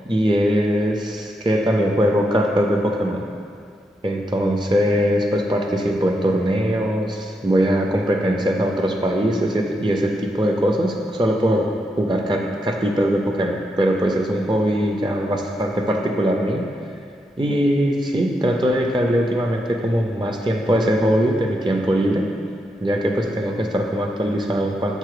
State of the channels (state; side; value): normal; both; correlation 0.82